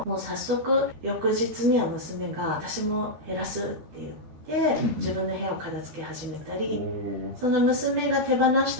もう早速翌日には娘が私も減らすって言って自分の部屋を片付け始めたり、その娘が手放し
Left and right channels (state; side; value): late; left; 13 ms